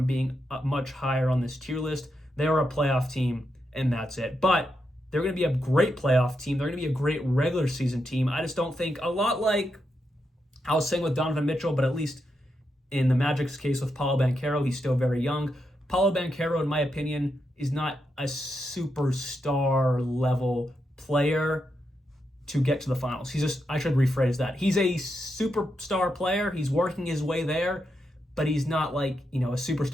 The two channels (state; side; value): normal; both; correlation 0.84